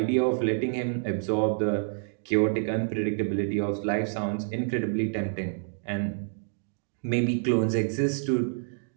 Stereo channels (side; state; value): left; silent; digital silence